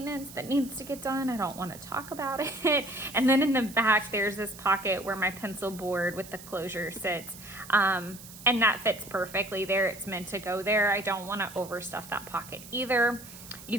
that needs to get done. I don't want to talk about it. And then in the back, there's this pocket where my pencil board with the closure sits. And that fits perfectly there. It's meant to go there. I don't want to overstuff that pocket either.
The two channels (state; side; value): noise; right; hiss, 16 dB below the sound